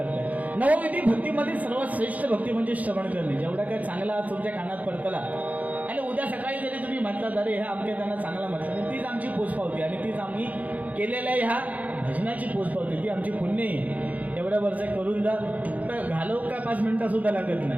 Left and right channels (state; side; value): late; left; 0.075 ms